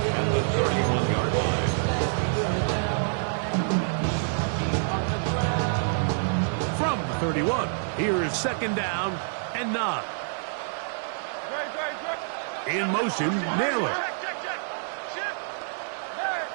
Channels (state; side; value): silent; left; 59 dB below the other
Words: at the 31-yard line. From the 31, here is 2nd down and 9. In motion, Naylor.